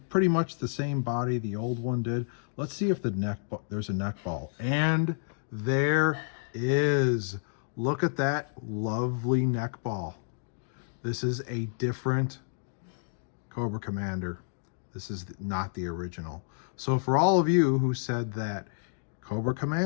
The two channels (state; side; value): silent; right; digital silence